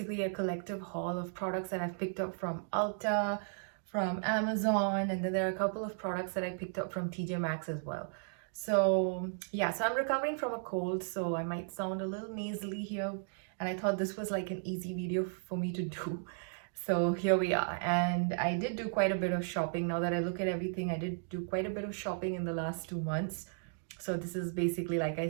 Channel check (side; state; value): left; silent; digital silence